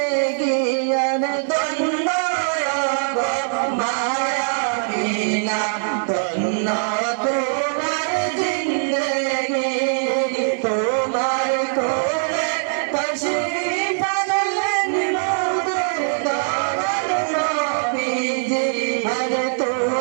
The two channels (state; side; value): silent; left; digital silence